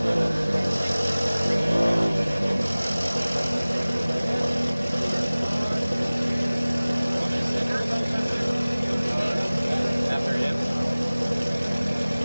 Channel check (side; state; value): both; inverted; correlation -0.99